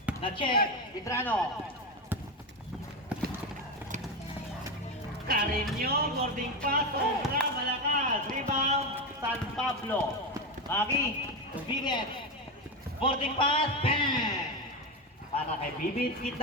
Na-check, Vitrano. Carreño, boarding pass, sobra, malakas. Rebound, San Pablo. Maki, Bibit. Boarding pass, bang! Para kay Bibit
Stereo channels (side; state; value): both; normal; correlation 0.15